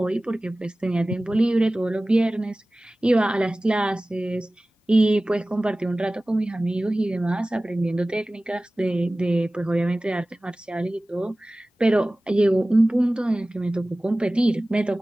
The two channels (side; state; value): both; normal; correlation 0.97